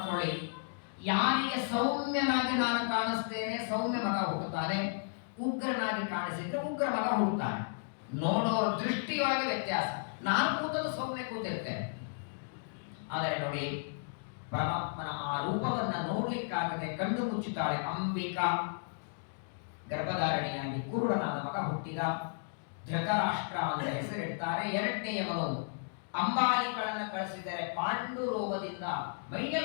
ಯಾರಿಗೆ ಸೌಮ್ಯನಾಗಿ ನಾನು ಕಾಣಿಸ್ತೇನೆ ಸೌಮ್ಯ ಮಗ ಹುಟ್ಟುತ್ತಾನೆ, ಉಗ್ರನಾಗಿ ಕಾಣಿಸಿದ್ರೆ ಉಗ್ರ ಮಗ ಹುಟ್ಟುತ್ತಾನೆ. ನೋಡೋರ ದೃಷ್ಟಿಯೊಳಗೆ ವ್ಯತ್ಯಾಸ. ನಾನು ಕೂತದ್ದು ಸೌಮ್ಯ ಕೂತಿರ್ತೇನೆ. ಆದರೆ ನೋಡಿ, ಪರಮಾತ್ಮನ ಆ ರೂಪವನ್ನ ನೋಡ್ಲಿಕ್ಕಾಗದೆ ಕಣ್ಣು ಮುಚ್ಚುತ್ತಾಳೆ ಅಂಬಿಕಾ. ಗರ್ಭಧಾರಣೆಯಾಗಿ ಕುರುಡನಾದ ಮಗ ಹುಟ್ಟಿದ. ಧೃತರಾಷ್ಟ್ರ ಅಂತ ಹೆಸರಿಡ್ತಾರೆ. ಎರಡನೆಯವನು ಅಂಬಾಲಿಕಳನ್ನ ಕಳಿಸಿದರೆ ಪಾಂಡು ರೋಗದಿಂದ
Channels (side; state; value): right; silent; digital silence